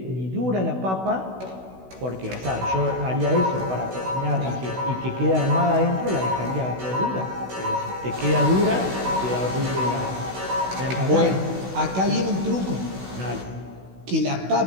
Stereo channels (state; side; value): late; left; 16 ms